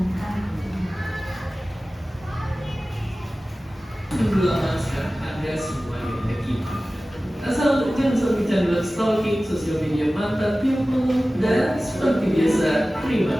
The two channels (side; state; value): both; normal; correlation 0.96